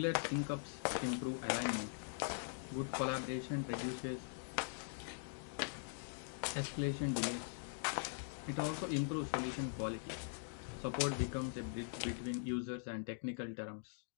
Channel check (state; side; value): silent; right; digital silence